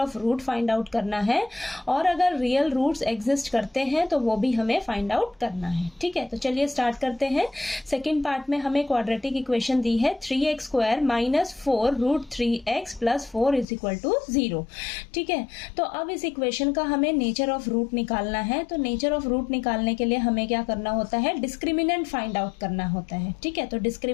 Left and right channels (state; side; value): drops out; right; at 13.7 s